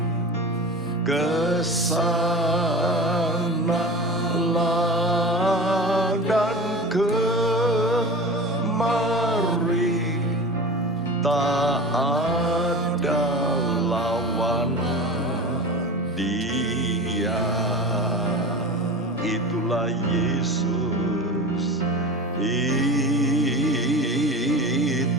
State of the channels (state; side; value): normal; both; correlation 0.32